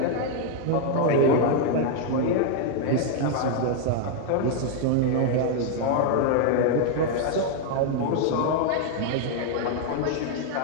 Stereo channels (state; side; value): different; both; correlation 0.00